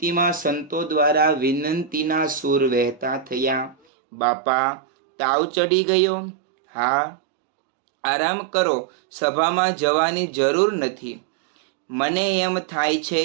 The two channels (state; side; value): drops out; left; at 3.8 s